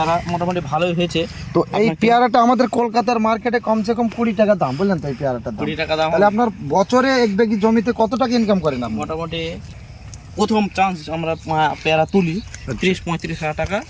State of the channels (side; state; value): both; identical; correlation 1.00